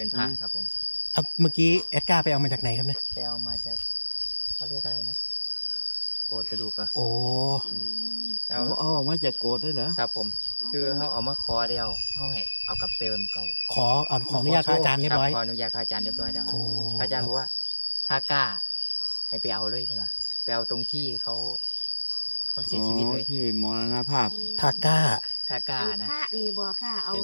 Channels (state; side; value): inverted; both; correlation -1.00